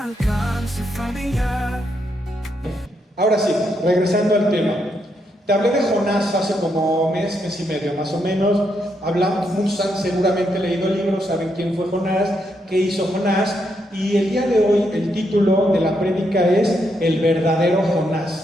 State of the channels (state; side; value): normal; both; correlation 0.79